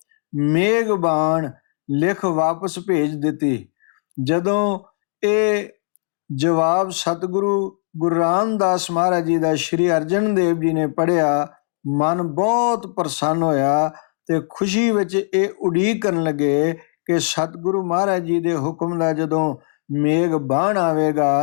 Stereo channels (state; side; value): silent; right; 66 dB below the other